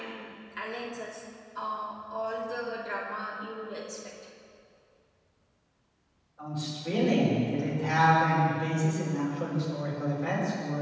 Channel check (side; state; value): both; identical; correlation 1.00